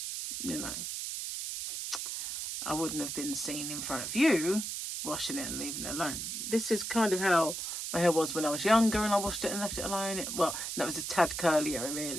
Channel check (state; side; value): noise; right; hiss, 4 dB below the sound